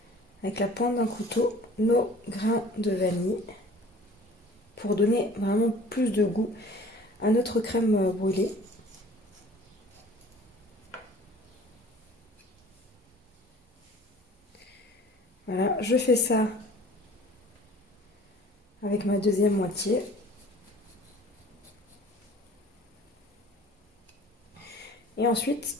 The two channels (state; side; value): normal; both; correlation 0.48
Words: avec la pointe d'un couteau nos grains de vanille pour donner vraiment plus de goût à notre crème brûlée. Voilà, je fais ça avec ma deuxième moitié. Et ensuite,